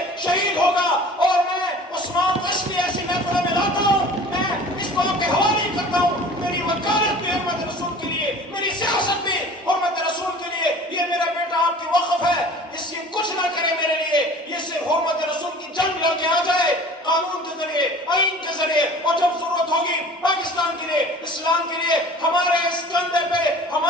شہید ہوگا۔ اور میں عثمان کو اس لیے ایسی محفلوں میں لاتا ہوں، میں اس بات کے حوالے کرتا ہوں، میری وکالت بھی حرمت رسول کے لیے، میری سیاست بھی حرمت رسول کے لیے۔ یہ میرا بیٹا آپ کی وقف ہے، اس سے کچھ نہ کرے میرے لیے، یہ صرف حرمت رسول کی جنگ لڑ کے آ جائے قانون کے ذریعے، آئین کے ذریعے، اور جب ضرورت ہوگی پاکستان کے لیے، اسلام کے لیے، ہمارے اس کندھے پہ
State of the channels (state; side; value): normal; both; correlation 0.44